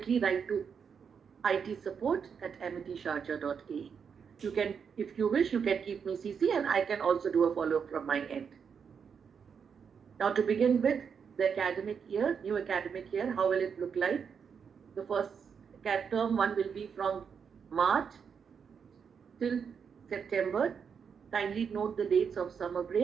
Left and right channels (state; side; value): quieter; left; 6.6 dB